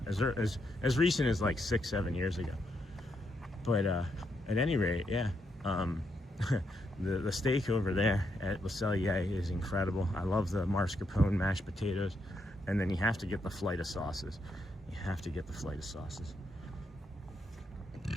recent as like 6-7 years ago. But at any rate, yeah, the steak over there at Le Cellier is incredible. I love the mascarpone mashed potatoes, and then you have to get the flight of sauces. You have to get the flight of sauces.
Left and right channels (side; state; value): both; normal; correlation 0.79